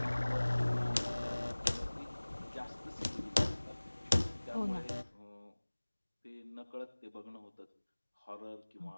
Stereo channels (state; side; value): inverted; both; correlation -1.00